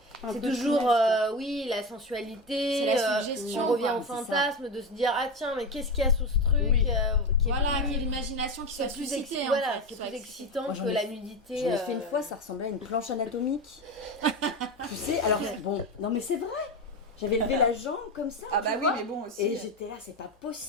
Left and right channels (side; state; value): both; normal; correlation 0.20